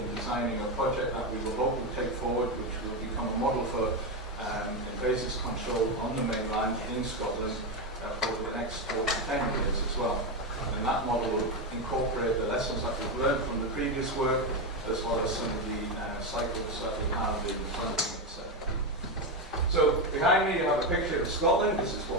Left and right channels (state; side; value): normal; both; correlation 0.11